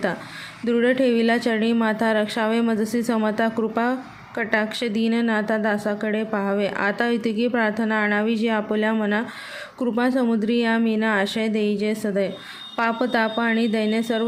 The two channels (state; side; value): identical; both; correlation 1.00